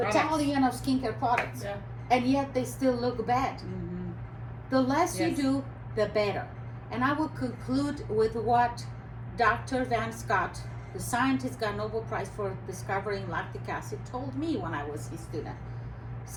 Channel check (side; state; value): both; identical; correlation 1.00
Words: of skincare products, and yet they still look bad. The less you do, the better. And I will conclude with what Dr. Van Scott, the scientist got Nobel Prize for discovering lactic acid, told me when I was his student.